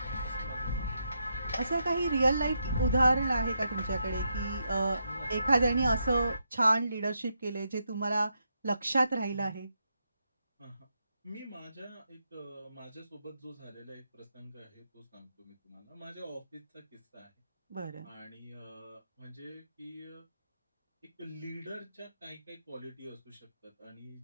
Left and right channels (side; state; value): both; inverted; correlation -0.82